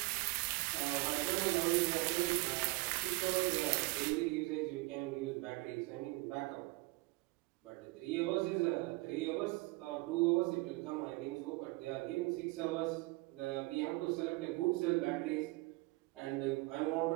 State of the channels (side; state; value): left; quieter; 23.7 dB